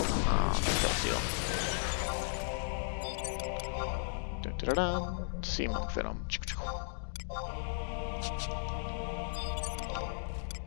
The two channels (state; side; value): silent; right; digital silence